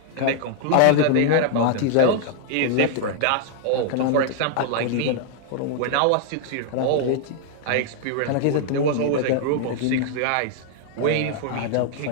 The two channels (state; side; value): different; both; correlation 0.00